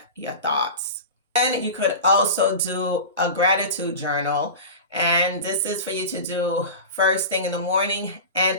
your thoughts. And you could also do a gratitude journal. And this is for you to do first thing in the morning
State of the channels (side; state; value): both; inverted; correlation -0.30